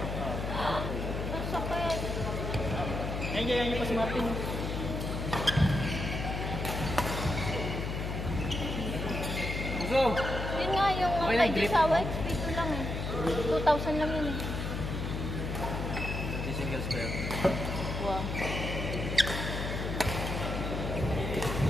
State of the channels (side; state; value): left; noise; hum, 3 dB below the sound